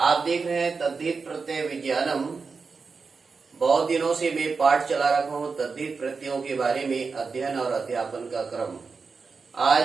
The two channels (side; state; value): left; quieter; 4.8 dB